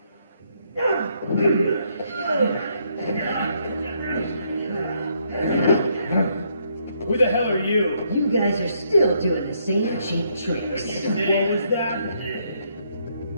Who the hell are you? You guys are still doing the same cheap tricks. What was that?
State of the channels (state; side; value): inverted; both; correlation -0.73